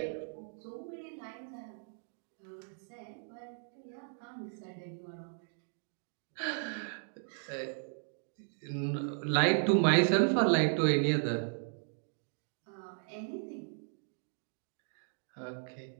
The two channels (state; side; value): silent; left; digital silence